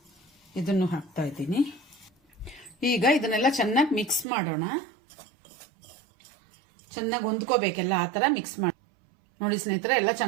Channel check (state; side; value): drops out; left; at 4.2 s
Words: ಇದನ್ನು ಹಾಕ್ತಾ ಇದ್ದೀನಿ. ಈಗ ಇದನ್ನೆಲ್ಲ ಚೆನ್ನಾಗಿ ಮಿಕ್ಸ್ ಮಾಡೋಣ. ಚೆನ್ನಾಗಿ ಹೊಂದ್ಕೋಬೇಕೆಲ್ಲ, ಆ ಥರ ಮಿಕ್ಸ್ ಮಾಡಿ. ನೋಡಿ ಸ್ನೇಹಿತರೆ, ಎಲ್ಲ